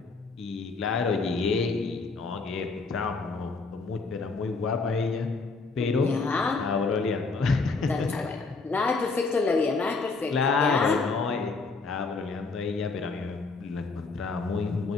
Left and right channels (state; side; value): quieter; right; 4.1 dB